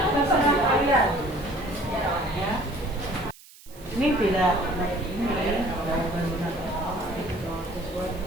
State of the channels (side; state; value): right; noise; hiss, 22 dB below the sound